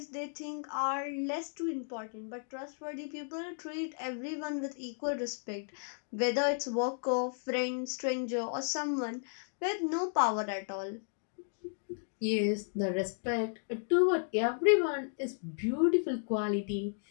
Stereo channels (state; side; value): silent; right; digital silence